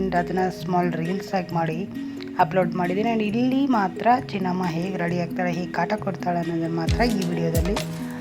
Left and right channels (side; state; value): both; identical; correlation 1.00